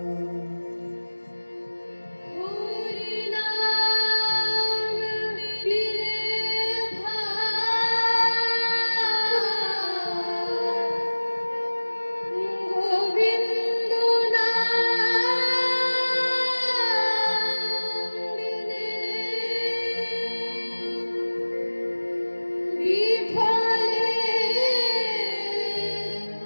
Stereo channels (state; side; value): inverted; both; correlation -1.00